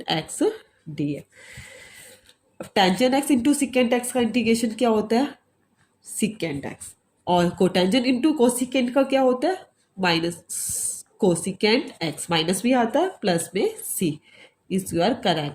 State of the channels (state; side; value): identical; both; correlation 1.00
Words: एक्स डी एक्स। अब tangent x into secant x का इंटीग्रेशन क्या होता है सिकेंट एक्स, और कोटेंजेंट इंटू कोसिकेंट का क्या होता है माइनस कोसिकेंट एक्स, माइनस भी आता है प्लस में c is your